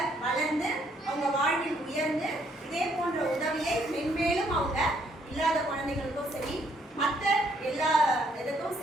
வளர்ந்து அவங்க வாழ்வில் உயர்ந்து இதே போன்ற உதவியை மென்மேலும் அவங்க இல்லாத குழந்தைகளுக்கும் சரி மற்ற எல்லா இதுக்கும்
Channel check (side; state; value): both; normal; correlation 0.69